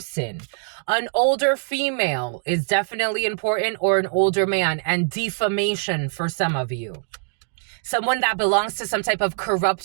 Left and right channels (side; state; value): left; silent; digital silence